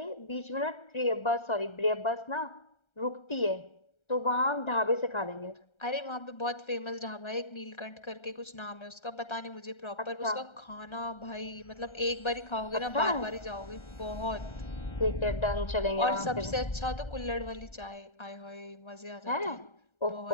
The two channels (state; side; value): late; right; 1.3 ms